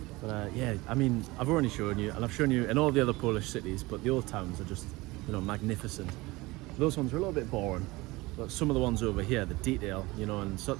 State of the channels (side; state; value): left; quieter; 21.6 dB